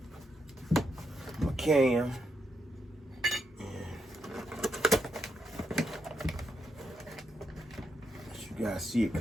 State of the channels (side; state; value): both; normal; correlation 0.81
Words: my cam. You guys see it